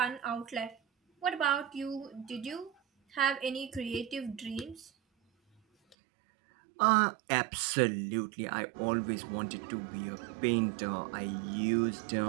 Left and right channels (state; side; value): drops out; left; at 6.0 s